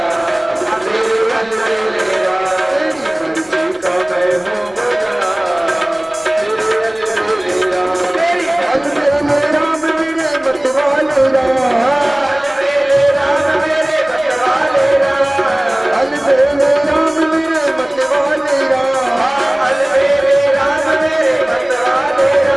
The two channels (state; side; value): noise; left; rumble, 28 dB below the sound